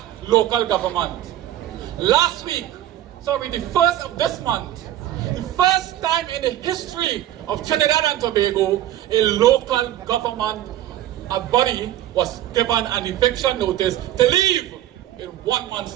local government. Last week, the 1st of this month, the first time in the history of Trinidad and Tobago, a local government body was given an eviction notice to leave in 1 month's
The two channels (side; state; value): left; quieter; 13.0 dB